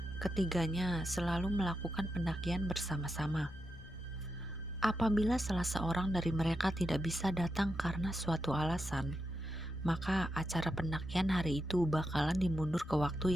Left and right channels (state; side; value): normal; both; correlation 0.86